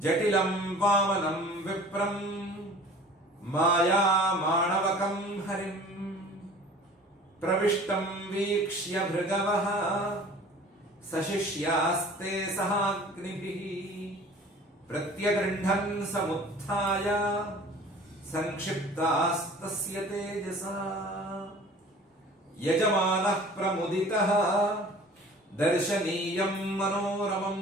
जटिलं वामनं विप्रं माया माणवकं हरिं प्रविष्टं वीक्ष्य भृगवः सशिष्यास्ते सहाग्निभिः प्रत्यगृह्णन् समुत्थाय संक्षिप्तास्तस्य तेजसा यजमानः प्रमुदितः दर्शनीयं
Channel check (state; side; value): normal; both; correlation 0.46